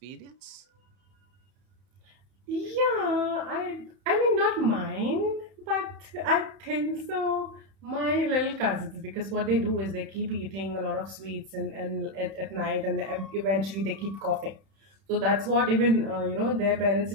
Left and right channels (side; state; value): left; late; 31 ms